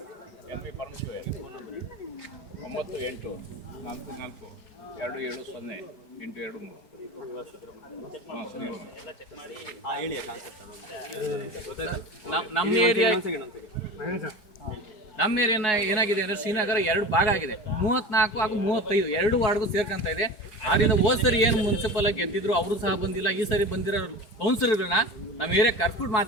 L V Parameshwar 9844270823. ಹಾಂ ಸರಿ. ನಮ್ಮ ಏರಿಯಾ ಏನಾಗಿದೆ ಅಂದರೆ ಶ್ರೀನಗರ 2 ಭಾಗ ಆಗಿದೆ. 34 ಹಾಗೂ 35 2 ವಾರ್ಡ್ಗೂ ಸೇರ್ಕೊಂತ ಇದೆ. ಆದ್ದರಿಂದ ಹೋದ್ ಸರಿ ಏನು ಮುನ್ಸಿಪಲ್ ಆಗಿ ಗೆದ್ದಿದ್ರು ಅವರು ಸಹ ಬಂದಿಲ್ಲ. ಈ ಸರಿ ಬಂದಿರೋ ಕೌನ್ಸಿಲರ್ಗಳನ್ನ ನಮ್ಮ ಏರಿಯಾ ಕರ್ಬಿಟ್ಟು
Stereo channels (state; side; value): late; right; 4.7 ms